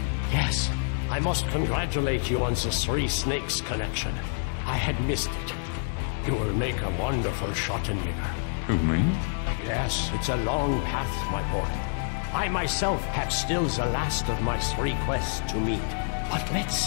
Yes. I must congratulate you on the Three Snakes connection. I had missed it. You will make a wonderful Schattenhager. Who, me? Yes, it's a long path, my boy. I myself have still the last of my 3 quests to meet. But let's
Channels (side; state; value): right; silent; digital silence